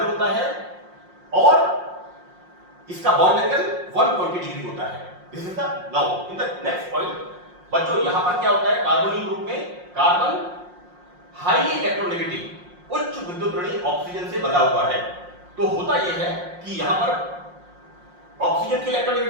होता है और इसका बॉन्ड एंगल 120 डिग्री होता है। This is the, now in the next point बच्चों, यहां पर क्या होता है, कार्बोनिल ग्रुप में कार्बन हाईली इलेक्ट्रोनेगेटिव उच्च विद्युत ऋणी ऑक्सीजन से बंधा हुआ है। तो होता यह है कि यहां पर ऑक्सीजन की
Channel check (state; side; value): late; left; 5.6 ms